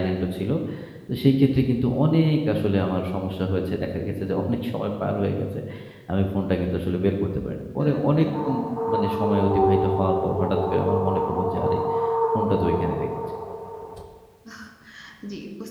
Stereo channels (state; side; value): identical; both; correlation 1.00